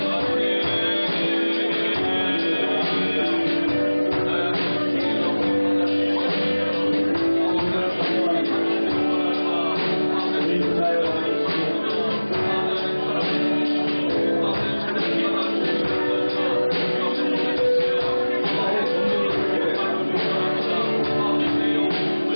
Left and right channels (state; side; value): inverted; both; correlation -1.00